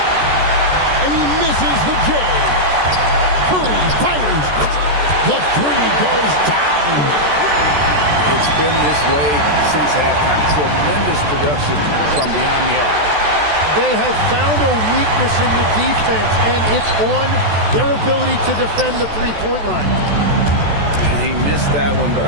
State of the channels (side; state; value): left; late; 14 ms